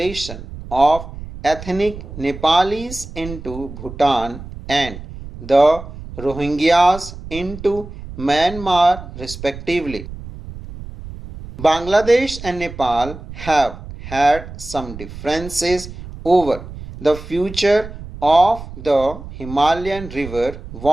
of ethnic Nepalis into Bhutan and the Rohingyas into Myanmar respectively. Bangladesh and Nepal have had some differences over the future of the Himalayan river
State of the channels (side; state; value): right; noise; rumble, 13 dB below the sound